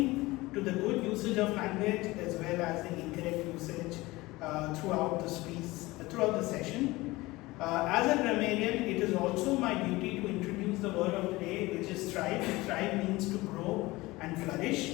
to the good usage of language as well as the incorrect usage throughout the speech, throughout the session. As a grammarian, it is also my duty to introduce the word of the day, which is thrive. Thrive means to grow and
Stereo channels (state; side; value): quieter; right; 20.5 dB